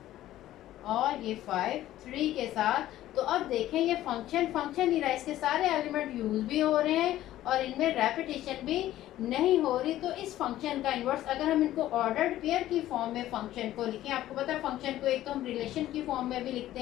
और ये 5 3 के साथ। तो अब देखें ये फंक्शन ही रहा, इसके सारे एलिमेंट यूज भी हो रहे हैं और इनमें रेपिटेशन भी नहीं हो रही। तो इस फंक्शन का इन्वर्स, अगर हम इनको ऑर्डर्ड पेयर की फॉर्म में फंक्शन को लिखें, आपको पता है फंक्शन को एक तो हम रिलेशन की फॉर्म में भी लिखते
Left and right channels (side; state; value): right; quieter; 14.0 dB